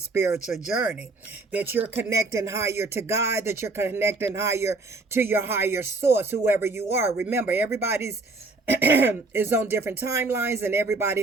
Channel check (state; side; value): quieter; left; 3.4 dB